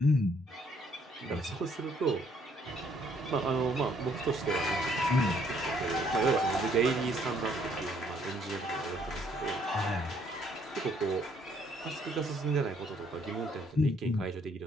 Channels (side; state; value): both; normal; correlation 0.66